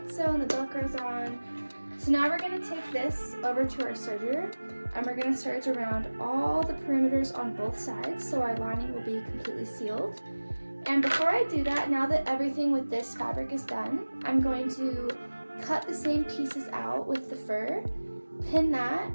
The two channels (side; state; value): both; inverted; correlation -1.00